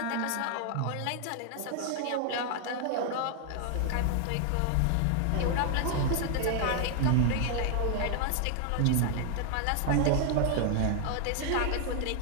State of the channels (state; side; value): different; both; correlation 0.00